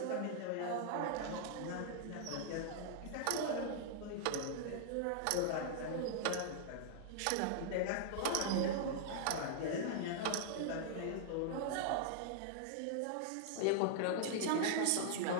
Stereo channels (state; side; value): different; both; correlation -0.01